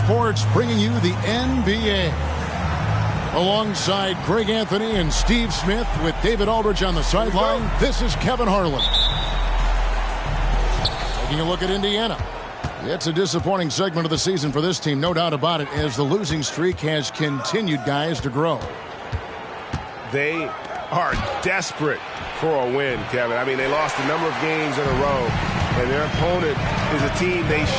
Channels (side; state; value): both; identical; correlation 1.00